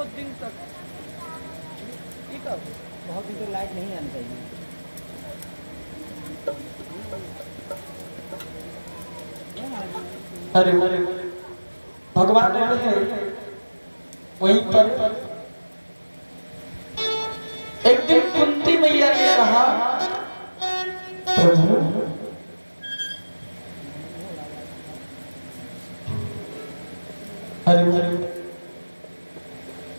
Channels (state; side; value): inverted; both; correlation -1.00